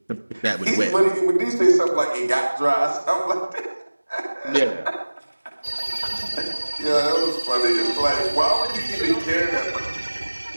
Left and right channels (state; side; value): inverted; both; correlation -1.00